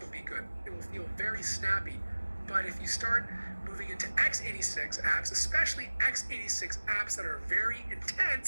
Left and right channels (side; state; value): both; inverted; correlation -1.00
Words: will be good. It will feel very snappy. But if you start moving into x86 apps, especially x86 apps that are very